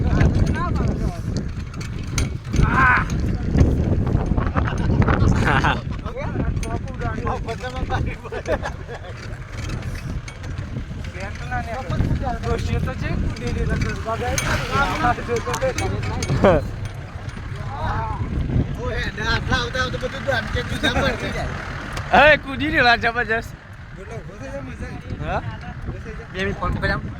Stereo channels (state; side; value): identical; both; correlation 1.00